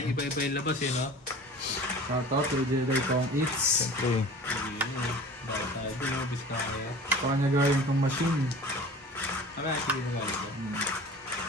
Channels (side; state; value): both; normal; correlation 0.41